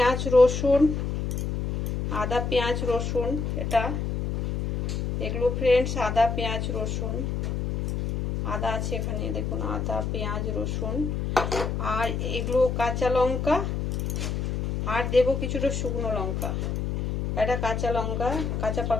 রসুন, এটা এগুলো ফ্রেন্ডস আদা পেঁয়াজ রসুন, আদা আছে এখানে, দেখুন আদা পেঁয়াজ রসুন। আর এগুলো কাঁচা লঙ্কা, আর দেবো কিছুটা শুকনো লঙ্কা। এটা কাঁচা লঙ্কা, কাঁচা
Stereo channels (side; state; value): left; noise; hum, 1 dB below the sound